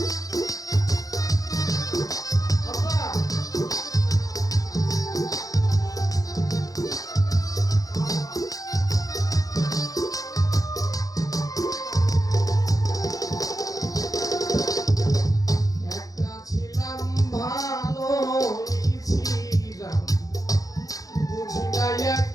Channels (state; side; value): late; right; 0.17 ms